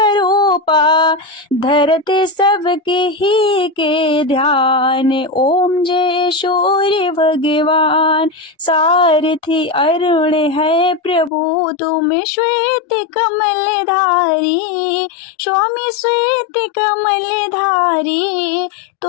धरते सबके ही के ध्यान। ओम जय सूर्य भगवान, सारथी अरुण है प्रभु, तुम श्वेत कमल धारी, स्वामी श्वेत कमल धारी,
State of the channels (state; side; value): drops out; right; at 11.3 s